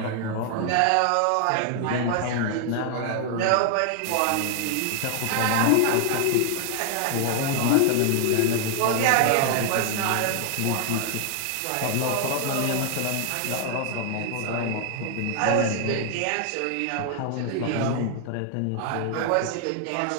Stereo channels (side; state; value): both; different; correlation 0.00